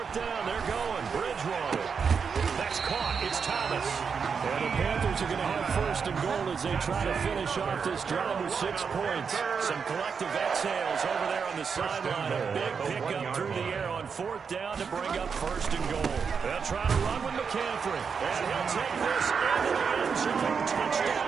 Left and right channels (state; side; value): quieter; left; 6.0 dB